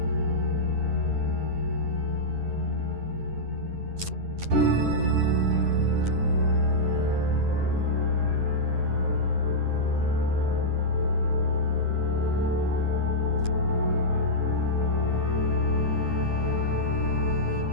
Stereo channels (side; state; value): left; late; 9.8 ms